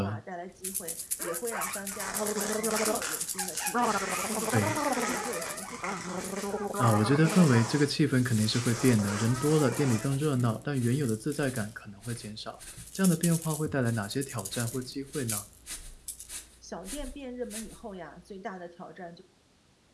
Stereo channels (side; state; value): both; identical; correlation 1.00